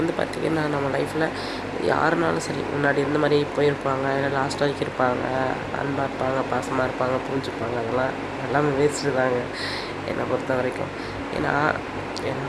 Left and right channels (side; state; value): both; identical; correlation 1.00